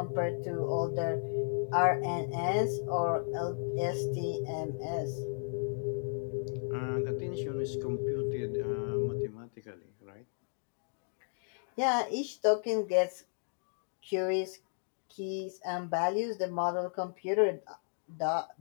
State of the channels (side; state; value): right; silent; digital silence